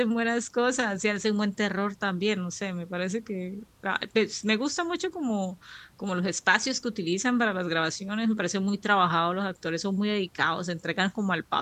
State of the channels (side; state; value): both; identical; correlation 1.00